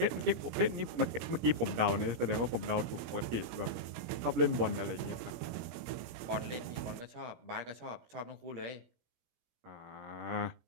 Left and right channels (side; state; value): left; late; 17 ms